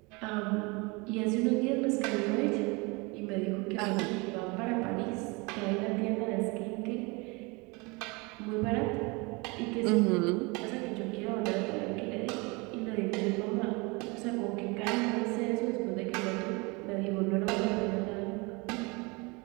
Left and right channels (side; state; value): left; quieter; 27.4 dB